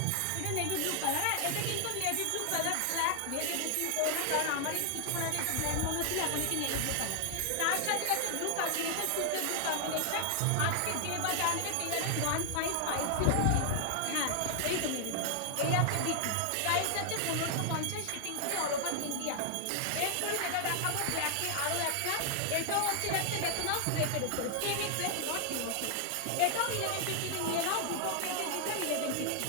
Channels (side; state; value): both; different; correlation 0.00